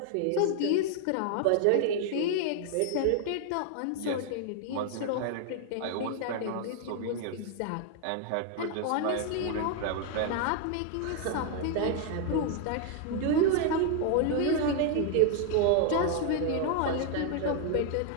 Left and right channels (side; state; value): both; different; correlation 0.00